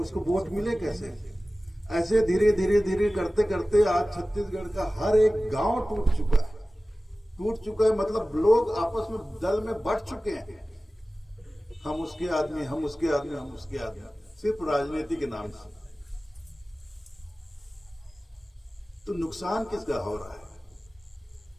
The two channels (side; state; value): both; normal; correlation 0.97